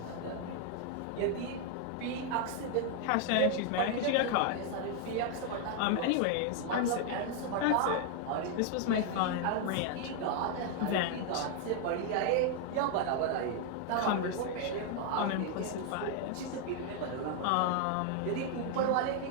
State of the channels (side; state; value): both; different; correlation 0.00